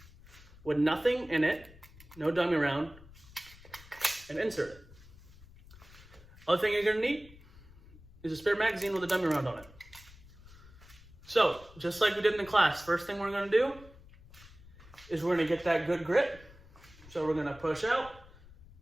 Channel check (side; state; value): left; noise; rumble, 21 dB below the sound